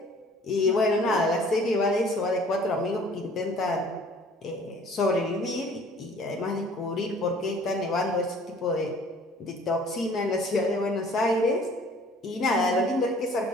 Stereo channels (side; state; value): both; normal; correlation 0.52